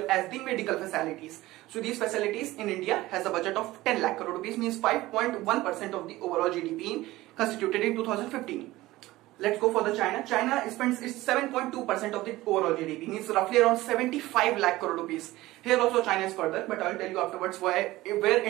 as the medical facilities. So these facilities in India has a budget of 10 lakh crore rupees, means 5.1% of the overall GDP constituted in 2015. Let's go for the China. China spends 7.2% of the overall GDP, means roughly around 75 lakh crore rupees. Here also China is further, but I'll tell you afterwards where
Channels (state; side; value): quieter; left; 17.8 dB